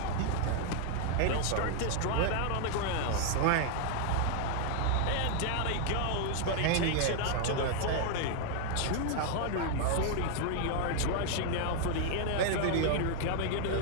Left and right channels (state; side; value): different; both; correlation 0.00